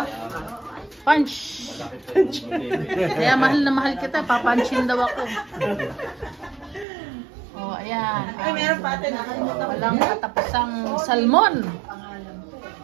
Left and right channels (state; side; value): drops out; left; at 6.9 s